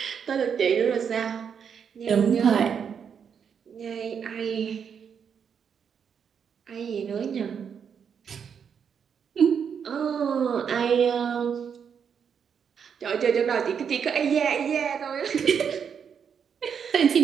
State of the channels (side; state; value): left; quieter; 7.2 dB